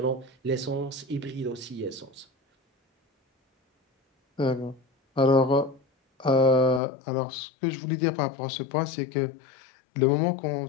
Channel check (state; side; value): drops out; right; at 6.8 s